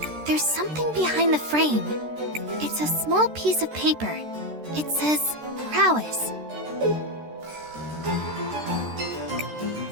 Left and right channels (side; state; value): left; late; 13 ms